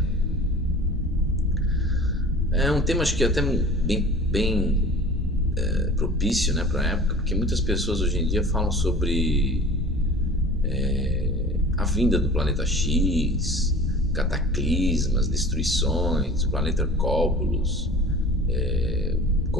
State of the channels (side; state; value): both; normal; correlation 0.42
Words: É um tema acho que até bem propício, né, para a época, porque muitas pessoas hoje em dia falam sobre a vinda do planeta X, cataclismas, destruições, o planeta Cóbulos,